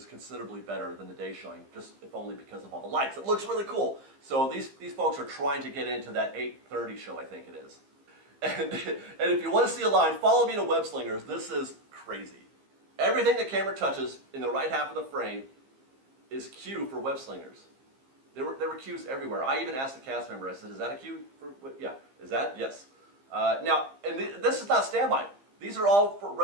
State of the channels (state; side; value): late; left; 15 ms